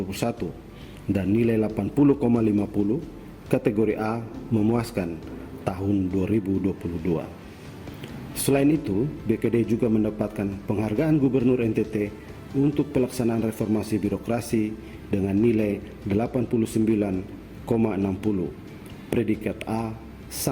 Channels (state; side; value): identical; both; correlation 1.00